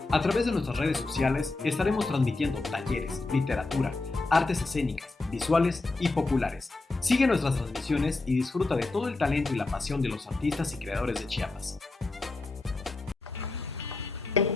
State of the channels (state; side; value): quieter; right; 3.4 dB